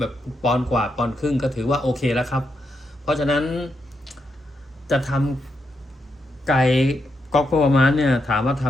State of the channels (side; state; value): both; normal; correlation 0.82